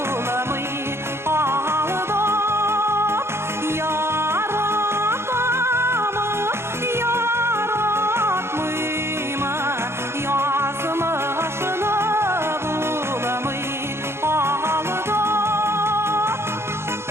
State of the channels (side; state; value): left; late; 0.12 ms